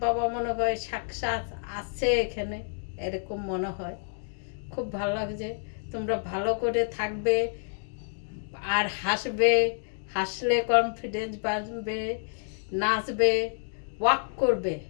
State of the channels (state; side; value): silent; right; digital silence